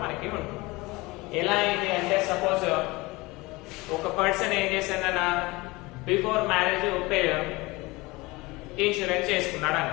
మనకి ఉంటుంది. ఎలా అయింది అంటే, సపోజ్ ఒక పర్సన్ ఏం చేశాడన్నా, బిఫోర్ మ్యారేజ్ ఇన్సూరెన్స్ చేసుకున్నాడు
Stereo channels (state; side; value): quieter; right; 22.5 dB